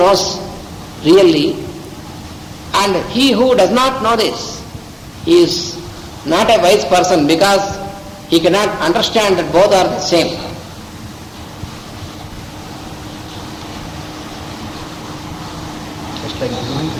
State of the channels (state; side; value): identical; both; correlation 1.00